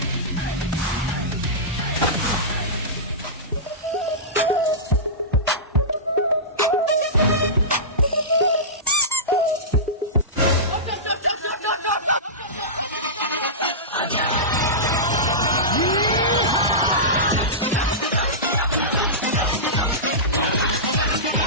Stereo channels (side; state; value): both; normal; correlation -0.17